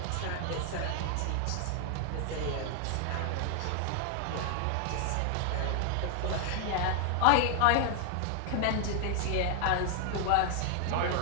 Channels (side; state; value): both; different; correlation 0.00